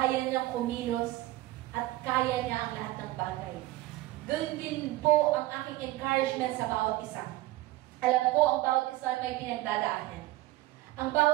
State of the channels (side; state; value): left; quieter; 17.7 dB